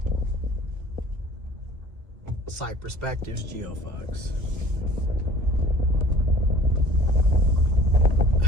Psych Perspectives, GeoFox.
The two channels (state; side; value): late; left; 1.5 ms